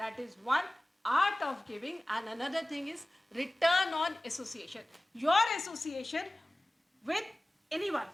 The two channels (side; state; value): both; normal; correlation 0.98